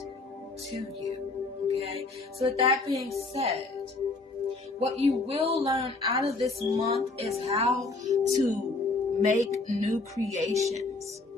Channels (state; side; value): quieter; right; 3.5 dB